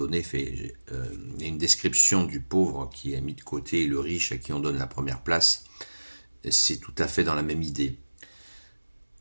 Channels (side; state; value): both; inverted; correlation -1.00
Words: il y a une description du pauvre qui est mis de côté et le riche à qui on donne la première place. C'est tout à fait dans la même idée.